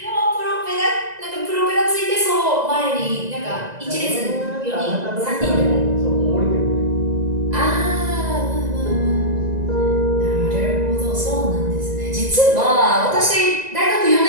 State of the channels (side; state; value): left; late; 1.9 ms